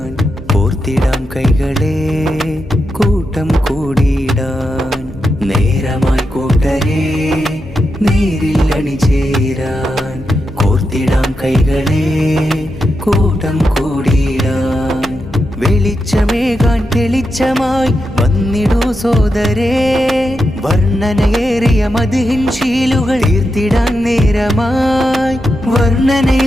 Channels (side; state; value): both; normal; correlation 0.87